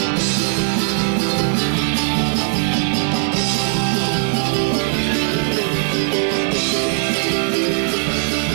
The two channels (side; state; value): left; silent; digital silence